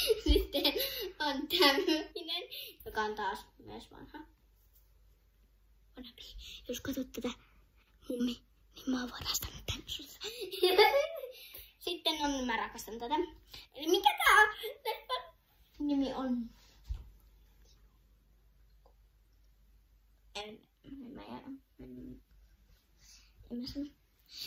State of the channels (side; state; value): both; identical; correlation 1.00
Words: Sitten on tämmöinen, joka on taas myös vanha. Jos katsot tätä mummi, niin mä oon varastanut tän sulta. Sitten on, mä rakastan tätä. Eli mikä tää on? Leffan nimi on...